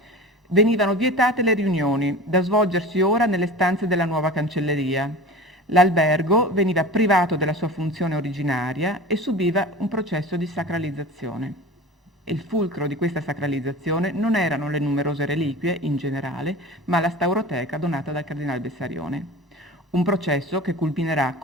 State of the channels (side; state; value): both; normal; correlation 0.35